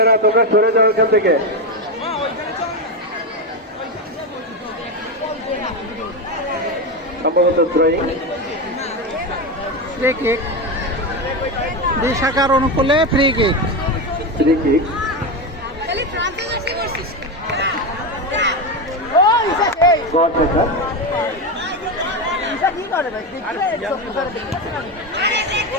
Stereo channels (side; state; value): both; normal; correlation 0.14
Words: তোমরা সরে যাও এখান থেকে। সম্ভবত থ্রোয়িং, ফ্রি কিক, দুই শাখার অনুকূলে ফ্রি কিক।